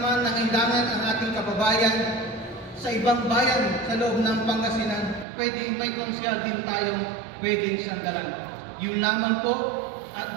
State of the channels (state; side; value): drops out; left; at 5.2 s